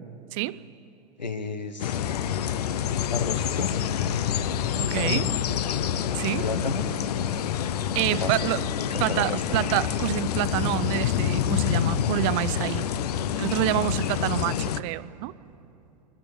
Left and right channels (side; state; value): both; normal; correlation -0.13